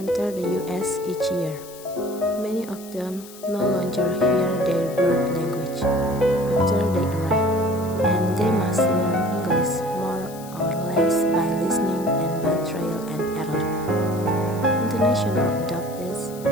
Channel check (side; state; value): left; noise; hiss, 18 dB below the sound